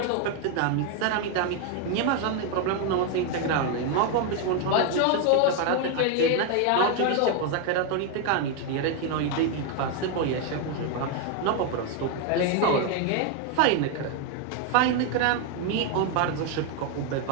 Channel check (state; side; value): different; both; correlation 0.01